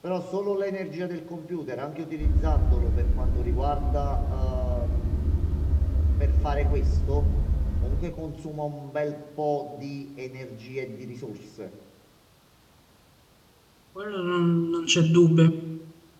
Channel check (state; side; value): identical; both; correlation 1.00